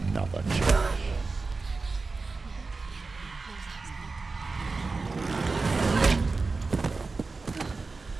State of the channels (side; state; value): left; quieter; 4.0 dB